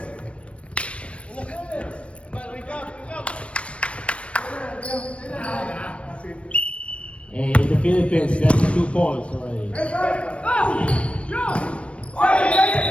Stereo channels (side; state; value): right; late; 0.061 ms